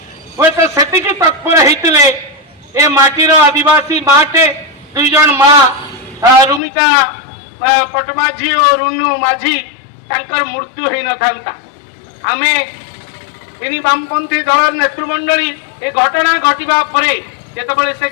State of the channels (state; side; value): drops out; right; at 6.6 s